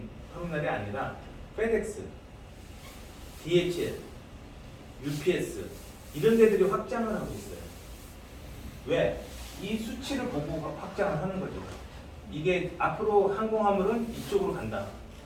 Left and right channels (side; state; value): both; identical; correlation 1.00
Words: 터미널이 아니라 FedEx, DHL, UPS 이런 데들이 확장을 하고 있어요. 왜? 이 수치를 보고 확장을 하는 거죠. 이게 앞으로 항공화물은 이쪽으로 간다.